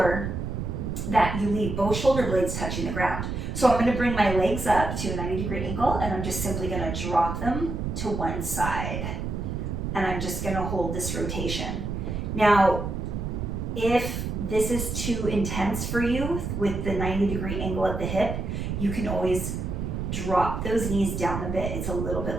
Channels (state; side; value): noise; right; rumble, 3 dB below the sound